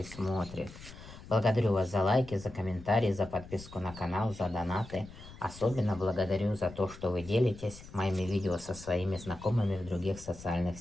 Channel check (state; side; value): noise; left; rumble, 16 dB below the sound